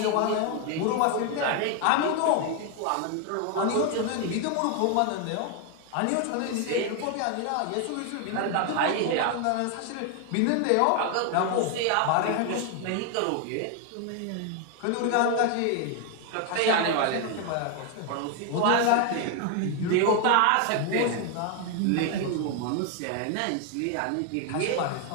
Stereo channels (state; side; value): different; both; correlation 0.01